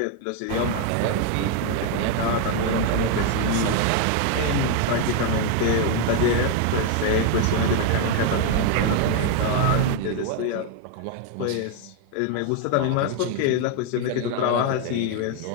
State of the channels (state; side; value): different; both; correlation 0.01